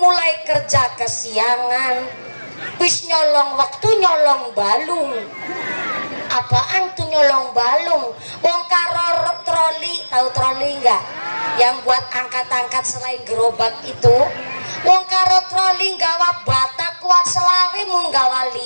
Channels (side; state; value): both; inverted; correlation -1.00